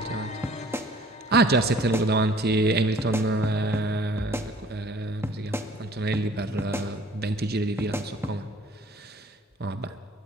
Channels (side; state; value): both; normal; correlation 0.53